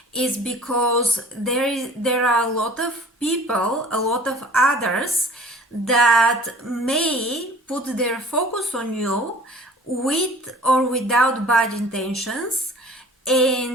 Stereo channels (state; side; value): normal; both; correlation 0.47